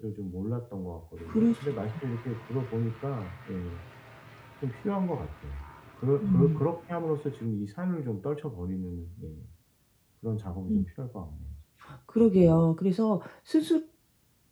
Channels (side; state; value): both; identical; correlation 1.00